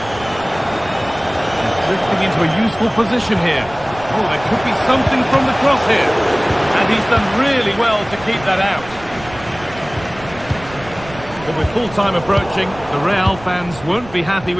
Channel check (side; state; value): right; noise; rumble, 18 dB below the sound